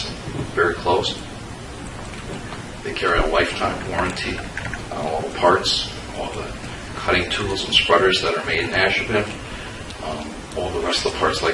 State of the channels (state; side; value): identical; both; correlation 1.00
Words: very close. They carry a lifetime warranty on all the parts, all the cutting tools and spreaders that are made in Ashland. All the rest of the parts,